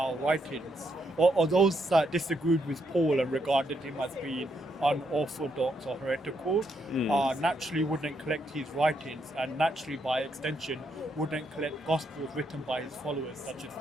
writings, or those that disagreed with Paul and regarded him as being unorthodox or heretical, naturally wouldn't collect his writings, and naturally, by extension, wouldn't collect gospels written by his followers, such as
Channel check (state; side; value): normal; both; correlation 0.77